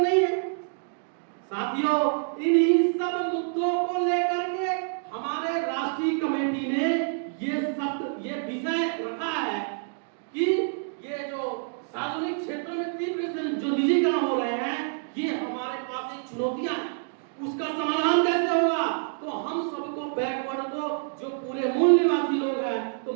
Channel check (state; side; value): silent; left; digital silence